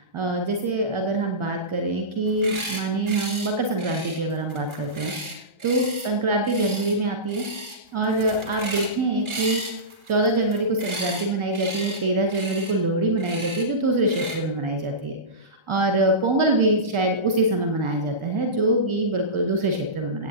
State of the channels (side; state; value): left; late; 1.4 ms